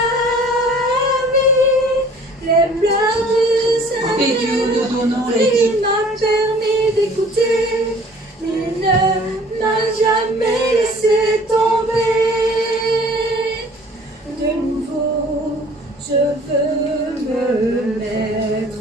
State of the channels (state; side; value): normal; both; correlation 0.51